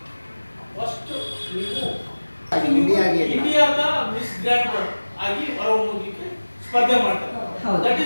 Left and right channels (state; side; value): inverted; both; correlation -1.00